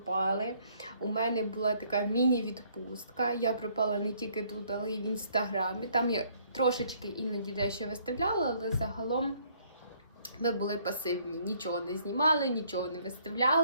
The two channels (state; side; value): inverted; both; correlation -0.64